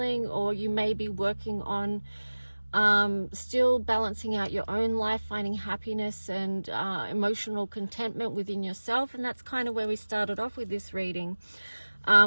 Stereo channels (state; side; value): inverted; both; correlation -1.00